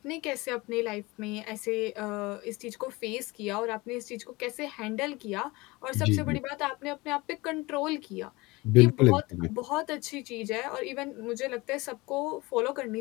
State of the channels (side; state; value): right; quieter; 22.8 dB